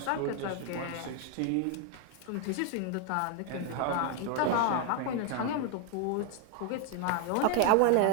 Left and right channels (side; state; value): both; different; correlation 0.00